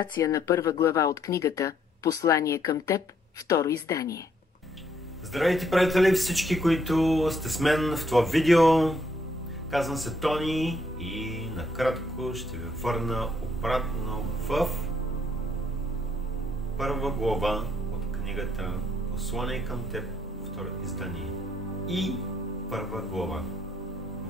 на първа глава от книгата «Послание към теб», второ издание. Здравейте, приятели, всички, които сте с мен в това видео. Казвам се Тони и накратко ще ви върна обратно в първа глава от книгата «Послание към теб», второ издание. И първа глава.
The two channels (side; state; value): both; normal; correlation 0.70